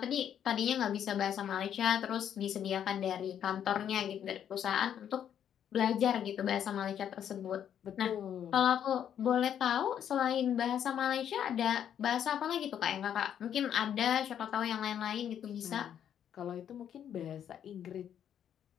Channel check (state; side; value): quieter; right; 9.4 dB